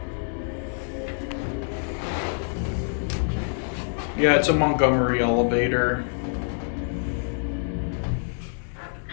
Yeah, it's a Montgomery elevator.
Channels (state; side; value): silent; right; 61 dB below the other